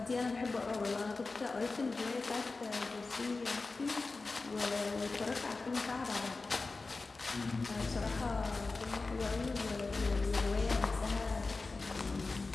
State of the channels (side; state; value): right; quieter; 3.7 dB